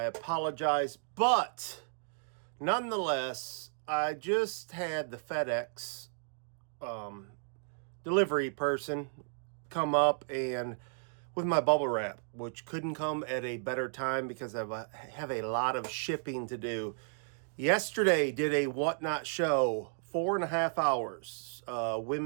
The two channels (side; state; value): left; silent; digital silence